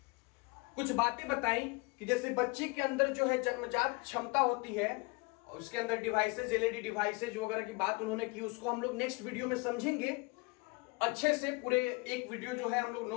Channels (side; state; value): right; quieter; 27.6 dB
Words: कुछ बातें बताई कि जैसे बच्चे के अंदर जन्मजात क्षमता होती है, उसके अंदर डिवाइसेज, एलईडी डिवाइसेज वगैरह की बात उन्होंने की। उसको हम लोग नेक्स्ट वीडियो में समझेंगे अच्छे से। पूरे एक वीडियो हम लोग